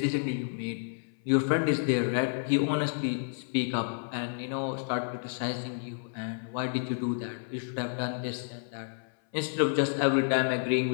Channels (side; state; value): right; silent; 58 dB below the other